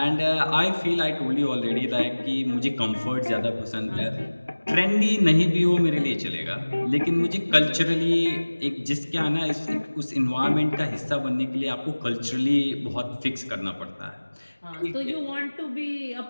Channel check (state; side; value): inverted; both; correlation -1.00